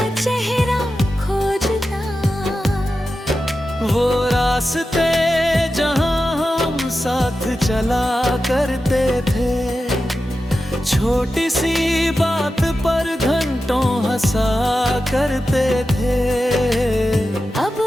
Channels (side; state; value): both; normal; correlation 0.92